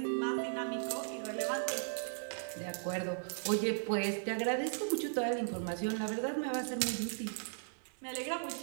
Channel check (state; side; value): silent; left; digital silence